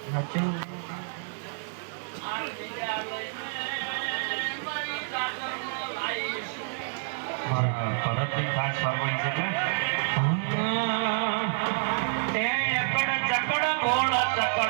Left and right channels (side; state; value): left; silent; 59 dB below the other